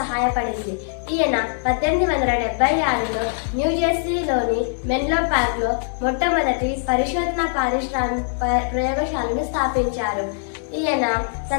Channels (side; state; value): right; silent; digital silence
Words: ఈయన 1876లో న్యూజెర్సీలోని మెన్లో పార్క్లో మొట్టమొదటి పరిశోధన ప్రయోగశాలను స్థాపించారు. ఈయన